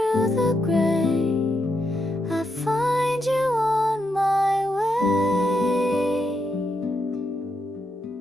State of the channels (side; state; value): both; normal; correlation 0.82